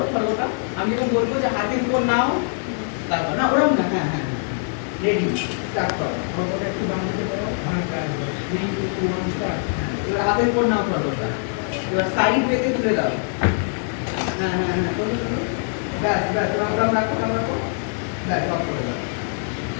খড়গটা। আমি যখন বলবো যে হাতের উপর নাও, তারপর না ওরকম না, হ্যাঁ হ্যাঁ রেডি, স্টার্ট করো। খড়গটা একটু বাম দিকে করো, এবার হাতের উপর নাও খড়গটা, এবার সাইড ওয়েতে তুলে দাও। হ্যাঁ হ্যাঁ হ্যাঁ, করো করো, ব্যাস ব্যাস, ওরকম রাখো, ওরকম রাখো, ব্যাস অফ করে দাও।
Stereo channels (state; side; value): silent; right; 63 dB below the other